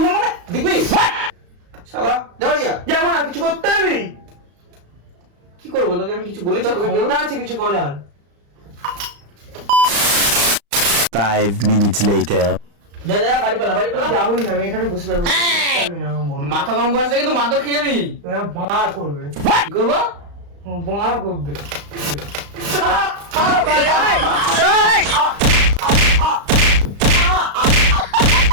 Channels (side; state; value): left; late; 35 ms